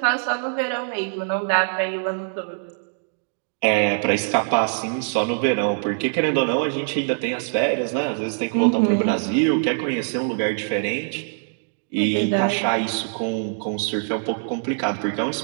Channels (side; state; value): left; silent; digital silence